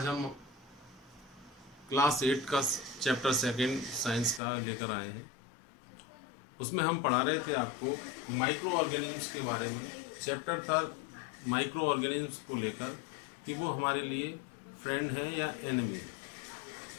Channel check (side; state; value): right; drops out; at 4.4 s